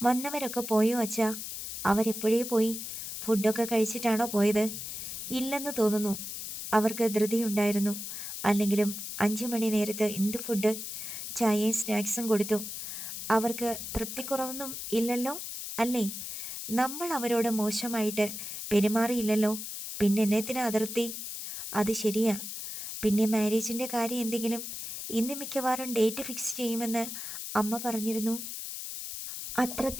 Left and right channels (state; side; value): noise; left; hiss, 7 dB below the sound